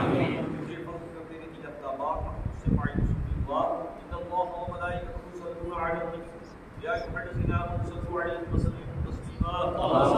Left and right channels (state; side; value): identical; both; correlation 1.00